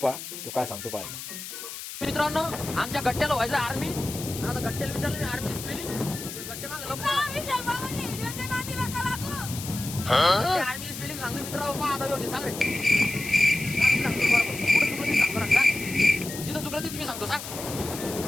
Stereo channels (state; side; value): noise; left; hiss, 9 dB below the sound